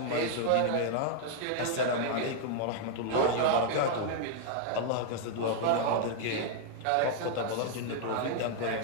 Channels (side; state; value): both; different; correlation -0.01